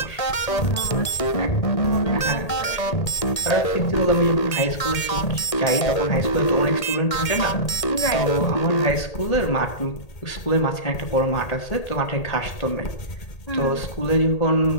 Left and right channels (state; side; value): late; right; 1.8 ms